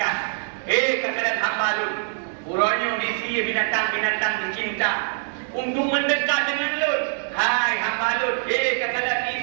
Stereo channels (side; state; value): left; silent; digital silence